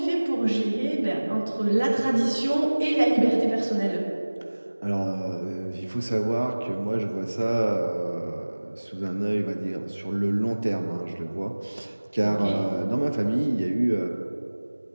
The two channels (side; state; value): both; inverted; correlation -1.00